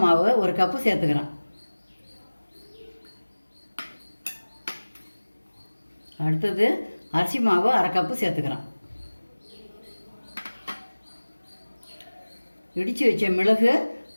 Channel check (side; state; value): both; inverted; correlation -1.00